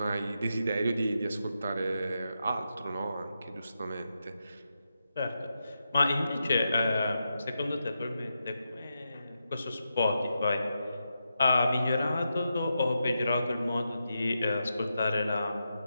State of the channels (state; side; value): inverted; both; correlation -0.87